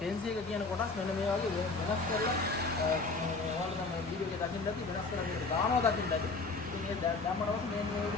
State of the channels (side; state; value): right; quieter; 3.8 dB